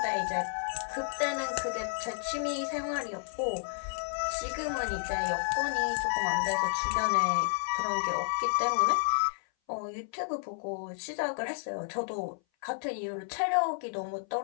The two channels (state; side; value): silent; right; 57 dB below the other